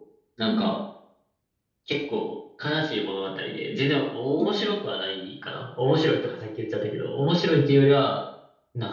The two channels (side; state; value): both; identical; correlation 1.00